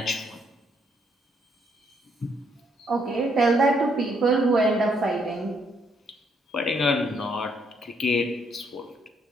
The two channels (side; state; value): both; normal; correlation 0.72